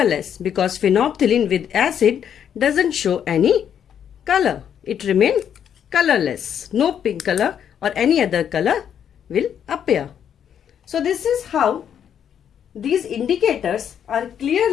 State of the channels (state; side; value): quieter; right; 8.8 dB